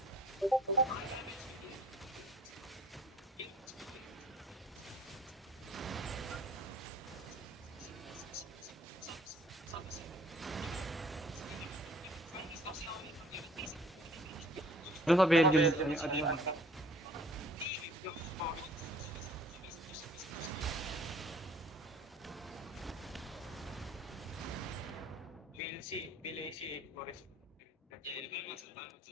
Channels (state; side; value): normal; both; correlation 0.54